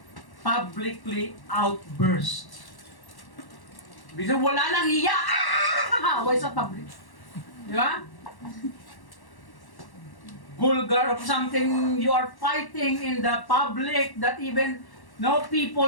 publicly outburst. Bisa wala nang hiya. Away sa public. Di ba? Vulgar of something you are fighting in the public that even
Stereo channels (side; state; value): right; late; 1.1 ms